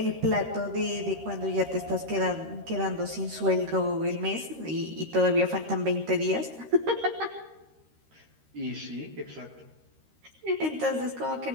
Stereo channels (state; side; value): late; left; 13 ms